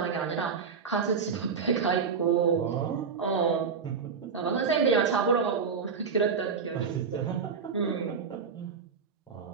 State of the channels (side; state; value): left; quieter; 5.7 dB